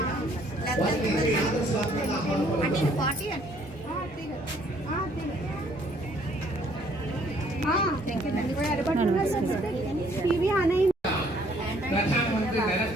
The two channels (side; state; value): both; normal; correlation 0.63